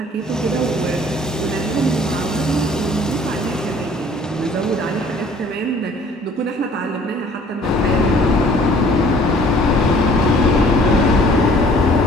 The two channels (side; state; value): both; normal; correlation 0.55